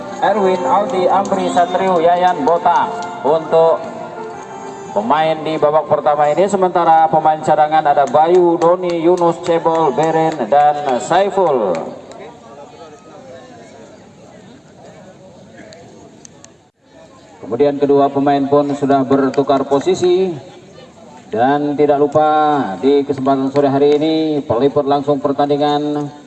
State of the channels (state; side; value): identical; both; correlation 1.00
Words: Erwin, Aldi, Amri, Satrio, Yayan, Bota untuk pemain di babak pertama ini. Sementara pemain cadangan ada Bayu, Doni, Yunus, Cebol, Beren, dan Saiful. Kemudian kedua pemain pun sudah bertukar posisi. Dan tidak lupa di kesempatan sore hari ini peliput langsung pertandingan